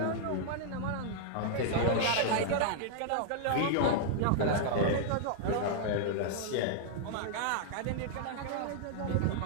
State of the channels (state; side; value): different; both; correlation -0.01